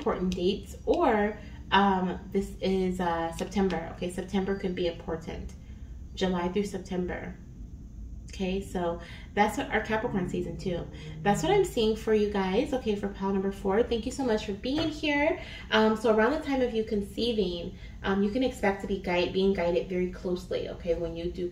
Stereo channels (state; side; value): identical; both; correlation 1.00